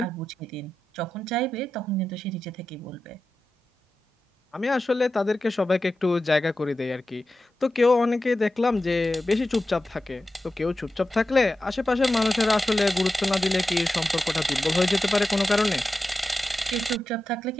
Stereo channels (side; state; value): both; normal; correlation 0.92